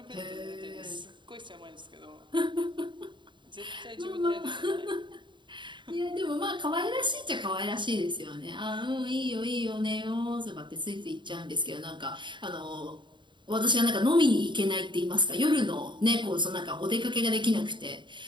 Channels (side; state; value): left; late; 0.23 ms